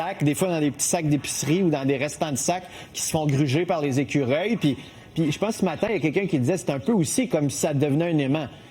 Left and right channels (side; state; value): both; identical; correlation 1.00